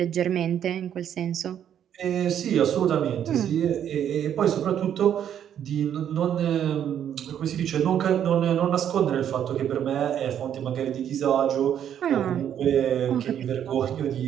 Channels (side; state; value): left; quieter; 9.6 dB